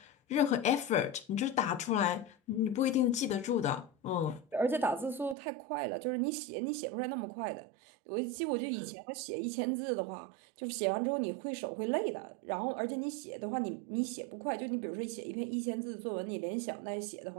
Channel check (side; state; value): left; drops out; at 5.4 s